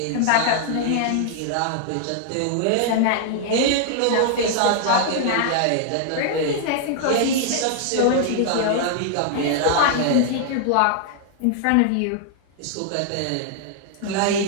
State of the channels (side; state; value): both; different; correlation 0.00